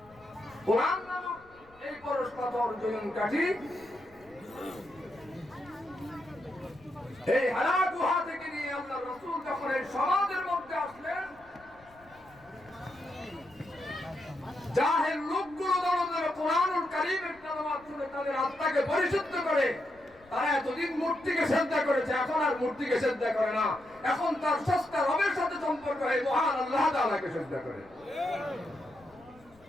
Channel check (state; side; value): noise; left; rumble, 28 dB below the sound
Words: कुरान नामक এই পরশ পাথর জয়ন কাঠি এই হারা গুহা থেকে নিয়ে আল্লাহর রাসূল যখন এই সমাজের মধ্যে আসলেন, জাহেল লোকগুলো যখন কোরআনুল কারীমের তেলাওয়াত শুনে তাদের আত্মাকে পরিশুদ্ধ করে, তারা এতদিন মূর্তিকে সিজদা করেছে, এখন আর মূর্তিকে সিজদা করে না, এখন তার স্রষ্টা রবের সাথে সম্পর্ক হয়, মহান আল্লাহ তাআলাকে সিজদা করে।